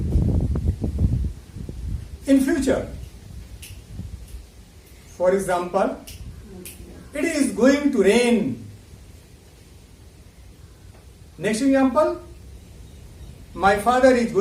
in future. For example, it is going to rain. Next example, my father is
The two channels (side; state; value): both; identical; correlation 1.00